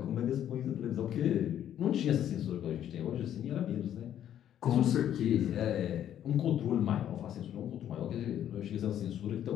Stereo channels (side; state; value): right; quieter; 10.6 dB